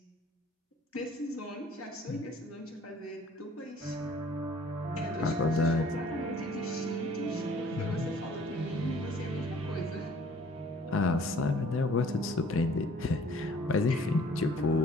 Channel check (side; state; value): both; normal; correlation 0.55